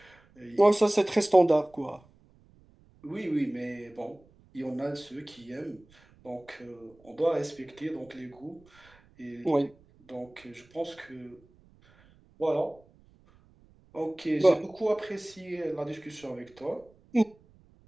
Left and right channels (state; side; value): noise; right; rumble, 29 dB below the sound